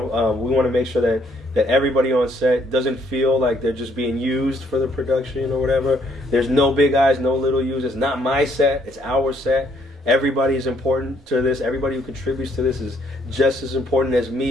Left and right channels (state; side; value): normal; both; correlation 0.68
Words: to make sure that everybody on set doesn't feel like they're just being used for the production or whatever. There's no big eyes, no little U's. It's not my set, it's our set. Everybody is important to this. Everybody who contributes to this is just as important as